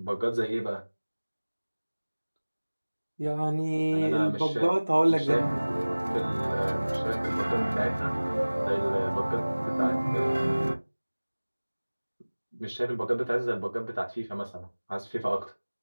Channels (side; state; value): both; inverted; correlation -1.00